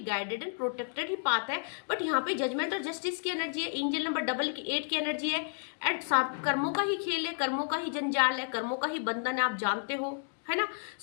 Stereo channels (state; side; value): silent; right; digital silence